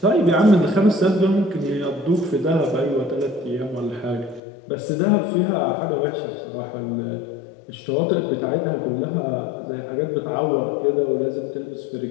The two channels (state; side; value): drops out; right; at 4.4 s